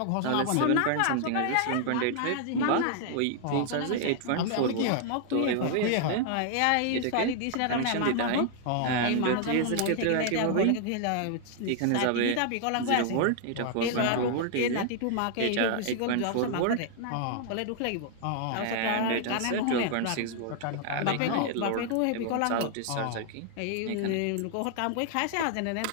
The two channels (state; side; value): different; both; correlation 0.00